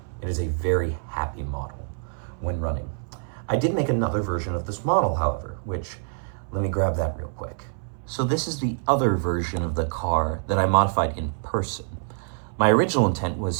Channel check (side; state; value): left; silent; 60 dB below the other